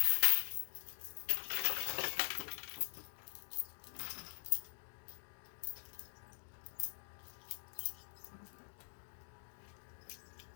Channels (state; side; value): silent; right; digital silence